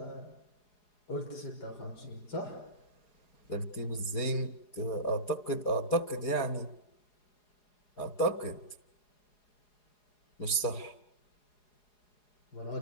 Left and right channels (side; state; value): right; late; 4.8 ms